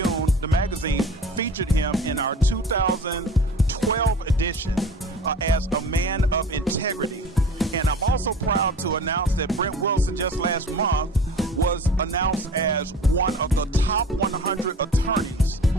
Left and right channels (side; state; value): both; normal; correlation 0.41